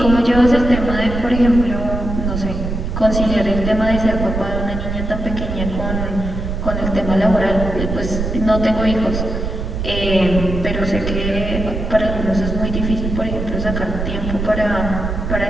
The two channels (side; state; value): right; noise; rumble, 4 dB below the sound